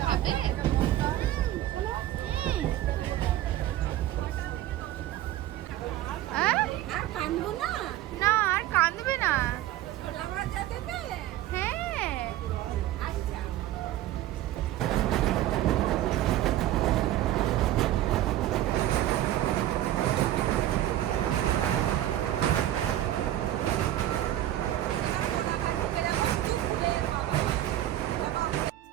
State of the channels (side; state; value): left; quieter; 13.6 dB